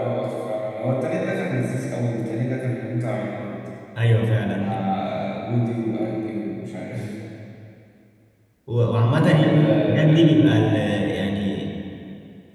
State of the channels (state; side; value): identical; both; correlation 1.00